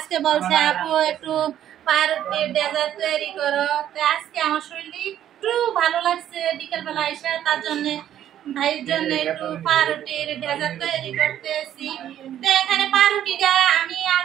বলছে আপু একটু পাউরুটির ডেজার্ট তৈরি করো। তো আজকে আমার শরীরটা একটু ভালো লাগছে বিকেলবেলা এসে, তার জন্য ভাইয়ের জন্য একটু পাউরুটির ডেজার্ট তৈরি করতেছি। তো এখানে পাউরুটিটা আমি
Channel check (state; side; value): quieter; left; 11.0 dB